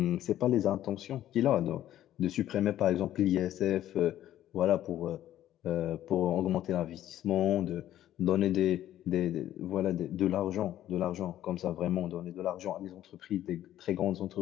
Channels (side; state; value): right; quieter; 12.6 dB